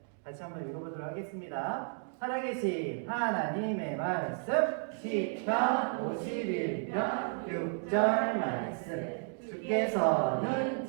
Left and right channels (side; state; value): left; silent; 56 dB below the other